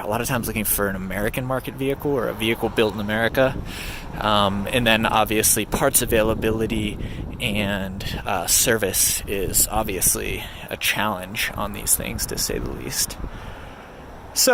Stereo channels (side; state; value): both; identical; correlation 1.00